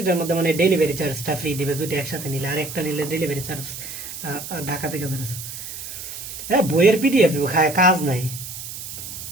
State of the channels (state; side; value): noise; right; hiss, 9 dB below the sound